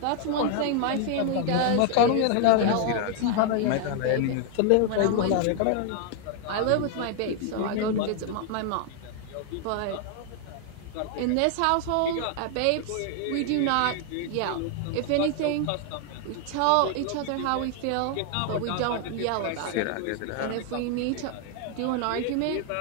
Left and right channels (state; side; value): different; both; correlation 0.00